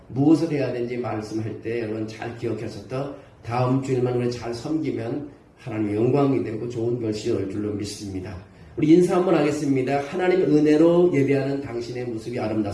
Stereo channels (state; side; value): identical; both; correlation 1.00